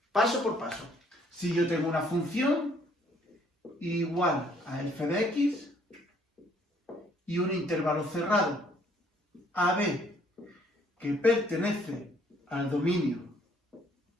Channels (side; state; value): both; normal; correlation 0.63